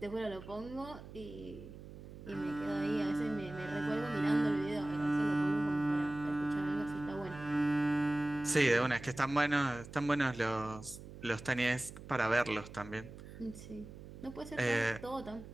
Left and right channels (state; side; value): noise; right; hum, 14 dB below the sound